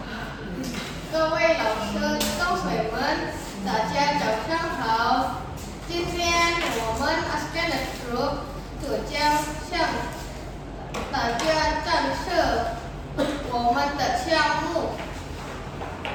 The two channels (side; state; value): both; identical; correlation 1.00